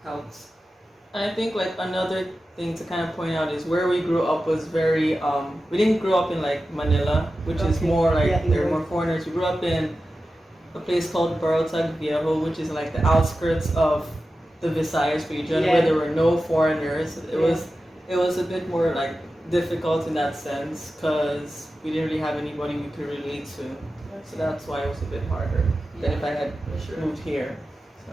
helps. I think like another thing to kind of point out is where we grew up was very we didn't grow up in like Manila, which is more like there are more foreigners. We grew up in a place called Barotag Viejo, which is like the outskirts of the Visayas region where there were no foreigners. It was a bit more like difficult in that sense because we didn't really have anybody we could relate to. So that's why it was a bit harder than if I had moved here. So.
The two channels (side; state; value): both; normal; correlation 0.93